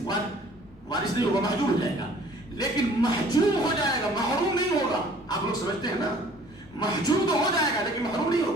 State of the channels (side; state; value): left; noise; rumble, 28 dB below the sound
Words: نہیں ہوگا، محجوب ہو جائے گا. لیکن محجوب ہو جائے گا، محروم نہیں ہوگا. آپ لوگ سمجھتے ہیں نا، محجوب تو ہو جائے گا لیکن محروم نہیں